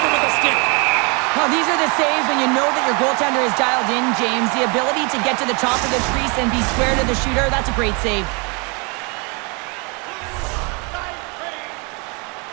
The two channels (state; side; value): quieter; left; 32.2 dB